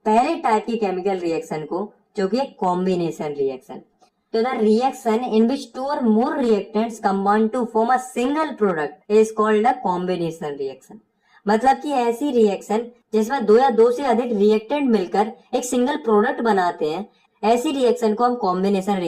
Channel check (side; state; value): both; identical; correlation 1.00